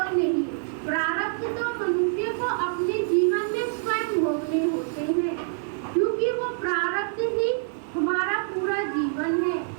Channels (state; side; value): silent; left; digital silence